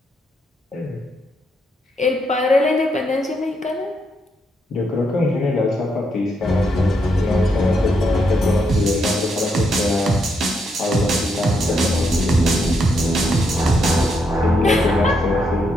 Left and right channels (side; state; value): both; normal; correlation 0.78